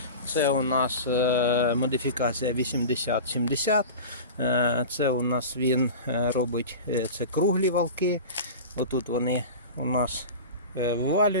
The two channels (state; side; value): inverted; both; correlation -0.31